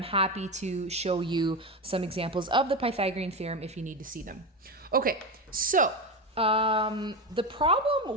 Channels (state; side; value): normal; both; correlation 0.17